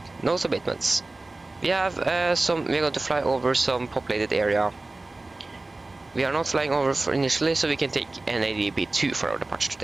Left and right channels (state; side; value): quieter; left; 3.1 dB